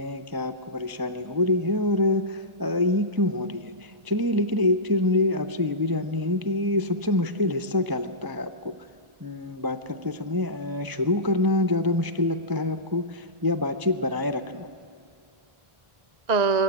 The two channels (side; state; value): left; late; 1.0 ms